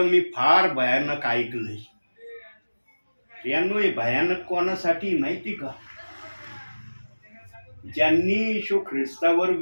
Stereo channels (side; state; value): both; inverted; correlation -1.00